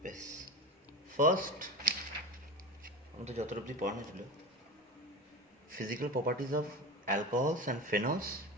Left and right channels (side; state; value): both; normal; correlation 0.26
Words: বেশ, ফার্স্ট আমাদের যত অবধি পড়ানো ছিল physical properties of alcohols and phenols